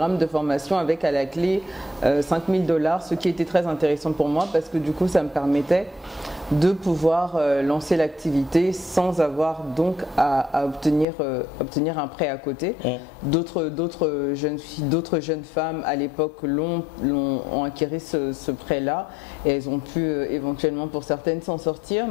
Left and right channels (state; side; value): drops out; right; at 11.1 s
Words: de formation avec à la clé $5000, ce qui était très intéressant pour moi parce que du coup ça me permettait de pouvoir lancer l'activité sans avoir donc à obtenir un prêt à côté. D'autres jeunes filles, d'autres jeunes femmes à l'époque ont acquis ce prêt-là et elles ont pu éventuellement pour certaines s'en sortir,